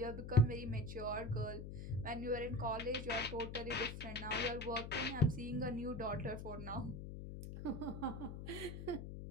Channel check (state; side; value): noise; left; hum, 8 dB below the sound